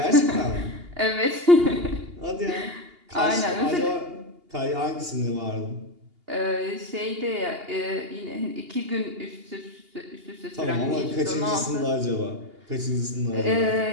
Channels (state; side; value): late; left; 2.8 ms